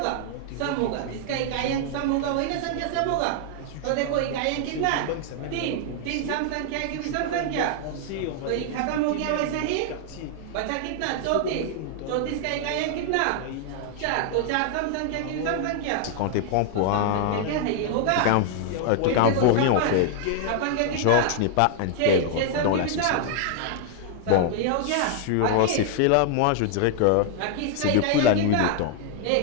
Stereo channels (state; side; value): different; both; correlation 0.00